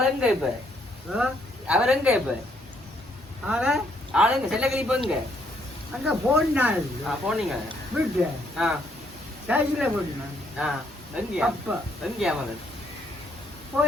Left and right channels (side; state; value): both; normal; correlation 0.71